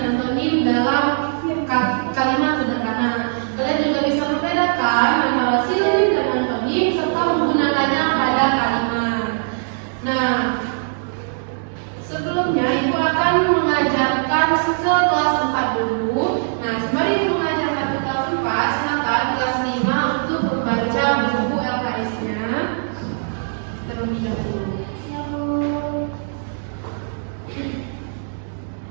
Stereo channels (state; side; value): silent; left; digital silence